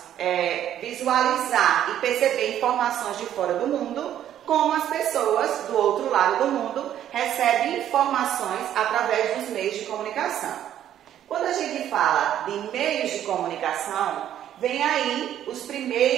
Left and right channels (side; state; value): left; quieter; 11.0 dB